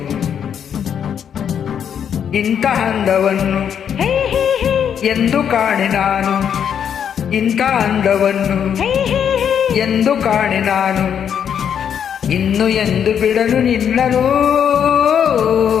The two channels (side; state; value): right; quieter; 8.4 dB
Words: ಇಂಥ ಅಂದವನ್ನು ಎಂದು ಕಾಣೆ ನಾನು, ಇಂಥ ಅಂದವನ್ನು ಎಂದು ಕಾಣೆ ನಾನು, ಇನ್ನು ಎಂದು ಬಿಡಲು ನಿನ್ನನು.